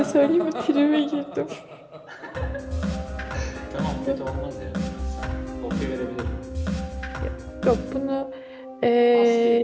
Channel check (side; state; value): both; identical; correlation 1.00